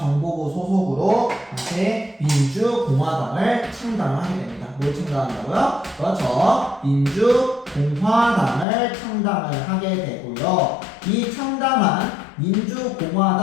소속으로 다시 민주공화당을 창당을 하게 됩니다. 뭘 창당한다고요? 그렇죠. 민주공화당을 창당을 하게 되고요. 이 창당한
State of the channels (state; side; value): drops out; right; at 8.7 s